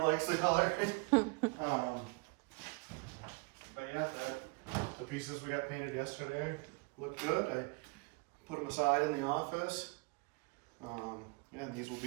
the color. But yeah, the pieces we got painted yesterday look good. I put them aside in the office. Yeah, and this will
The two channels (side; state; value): left; quieter; 30.8 dB